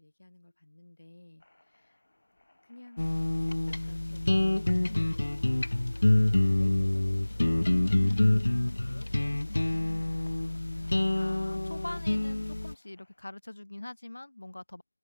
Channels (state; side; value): inverted; both; correlation -1.00